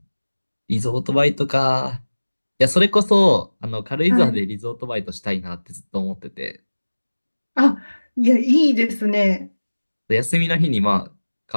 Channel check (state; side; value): inverted; both; correlation -1.00